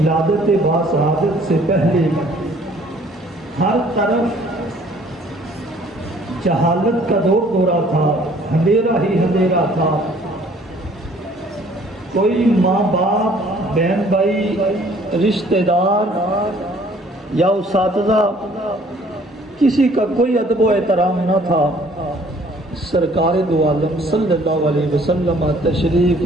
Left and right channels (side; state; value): both; normal; correlation 0.57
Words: باسعادت سے پہلے ہر طرف جہالت کا دورہ تھا، اندھیرا ہی اندھیرا تھا۔ کوئی ماں باپ، بہن بھائی، رشتہ دار یا اساتذہ، کسی کا کوئی ادب و احترام نہ تھا۔ سرکار دو عالم صلی اللہ علیہ وسلم تشریف